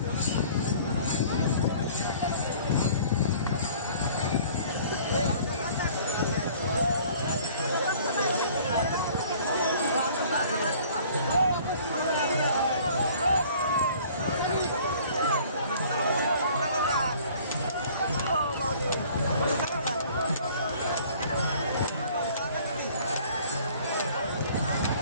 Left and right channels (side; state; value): both; inverted; correlation -0.52